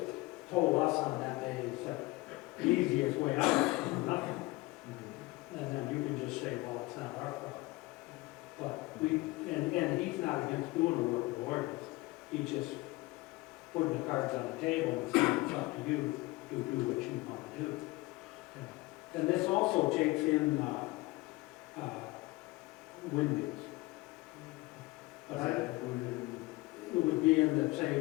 told us on that day, he said, the easiest way out is nothing. And then you can just say, well, it's not our problem. But and he's not against doing a workable ordinance. He's just putting the cards on the table and saying it's up to you to do what you want to do. Yeah. And this also takes in windmills. But it would be in the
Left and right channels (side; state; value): right; quieter; 21.4 dB